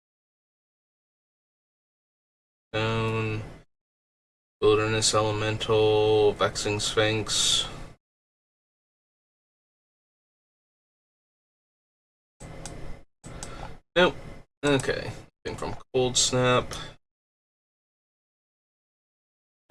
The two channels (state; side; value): identical; both; correlation 1.00